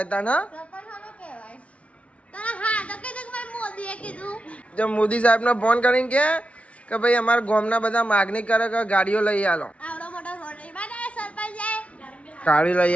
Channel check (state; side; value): late; right; 0.063 ms